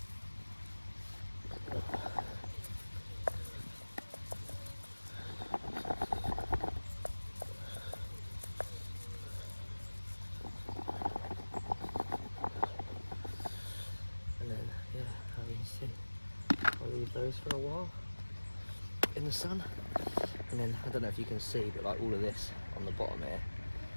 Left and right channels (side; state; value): both; inverted; correlation -1.00